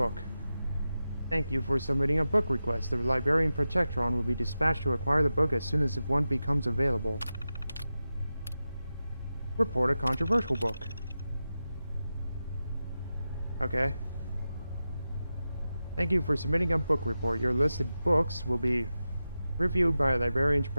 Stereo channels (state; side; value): inverted; both; correlation -0.92